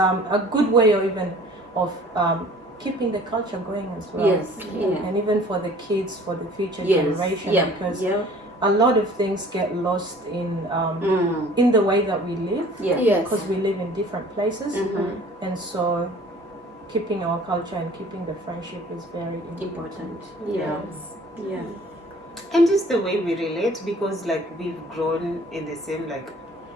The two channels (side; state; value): both; normal; correlation 0.50